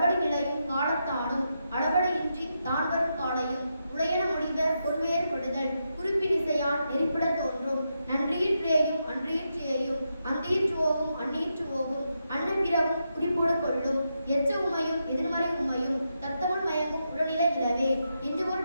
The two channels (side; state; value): both; inverted; correlation -0.84